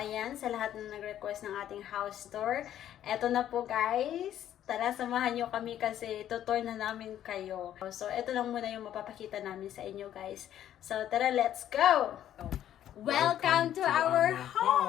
ayan, sa lahat na nag-request ng ating house tour. Eto na po guys. Tara, samahan nyo kami kasi tutour na namin kayo. So, eto lang muna yung mapapakita namin sa inyo guys. So, tara, let's go! Welcome to our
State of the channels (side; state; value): right; quieter; 11.2 dB